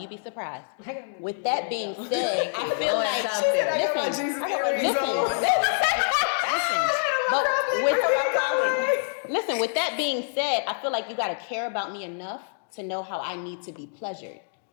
be surprised. With that being said, I feel Knowing like, something. I got my Jesus earrings on. Listen, with that being said, I feel like you gotta care about me enough to know how I need to be pleasured.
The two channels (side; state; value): right; silent; digital silence